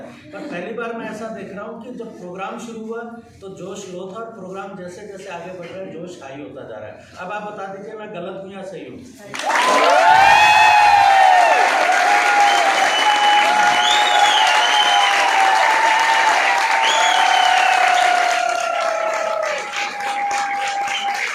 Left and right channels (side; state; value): both; identical; correlation 1.00